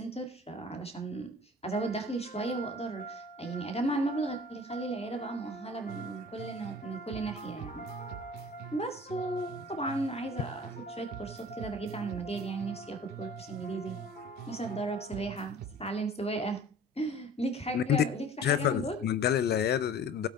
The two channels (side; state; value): both; normal; correlation 0.45